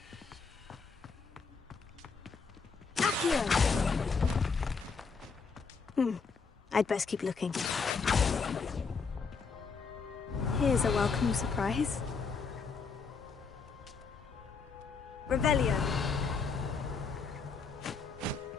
I'd best keep looking. Here's a welcome surprise. Revelio.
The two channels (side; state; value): right; quieter; 5.1 dB